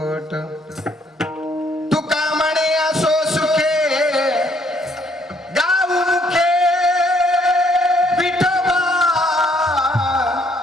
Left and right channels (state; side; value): normal; both; correlation 0.67